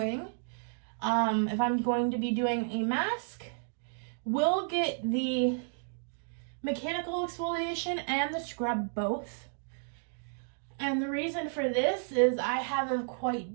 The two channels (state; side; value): silent; left; digital silence